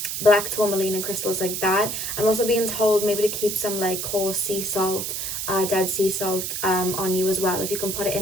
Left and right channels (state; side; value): noise; right; hiss, 3 dB below the sound